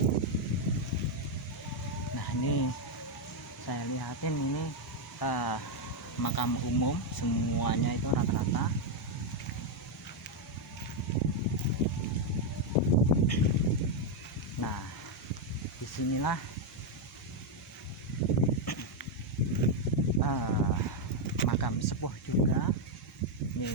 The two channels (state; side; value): normal; both; correlation 0.02